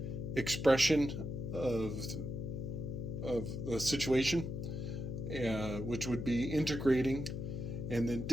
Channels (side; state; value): left; noise; hum, 4 dB below the sound